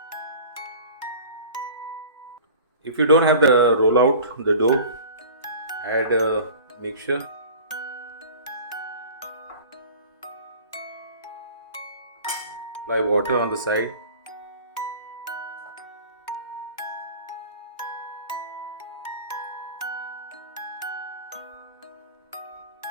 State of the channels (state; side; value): inverted; both; correlation -0.41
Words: If you don't have the roll out the dough, add a mixture. Apply water on the side.